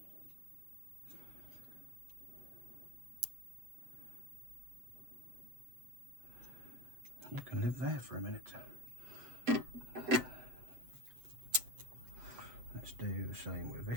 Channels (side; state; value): left; late; 7.9 ms